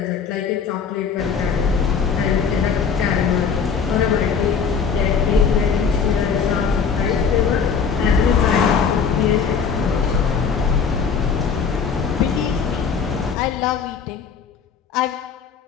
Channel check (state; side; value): quieter; right; 6.2 dB